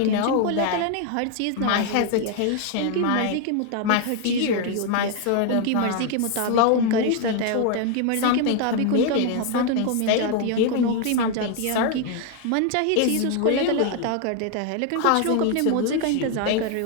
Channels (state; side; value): different; both; correlation 0.01